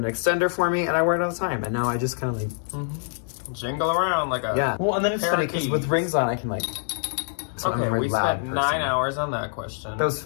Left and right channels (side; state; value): right; silent; digital silence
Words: extender for me, and I wear it all the time, and now I just kind of like... Jingle around like a... Yeah. Well, and then it's funny, because with rings on, I can like... So okay, we spent 9 hours on that question. That was